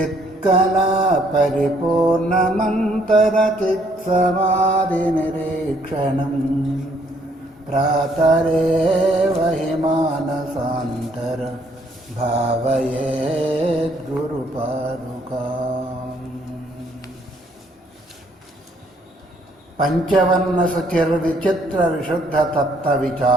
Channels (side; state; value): both; normal; correlation 0.66